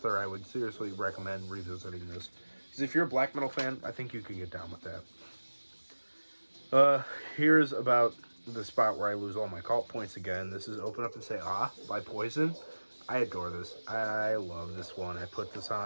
I would seriously recommend revisiting this, because if you're a black metal fan, I think you can get down with that. Here's about the spot where I lose all my cult points again. This is Open Up and Say Ah by Poison. I adore this. I love this one. I put this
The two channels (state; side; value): inverted; both; correlation -1.00